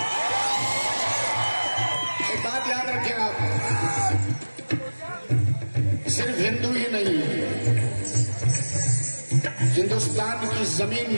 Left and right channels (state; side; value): inverted; both; correlation -1.00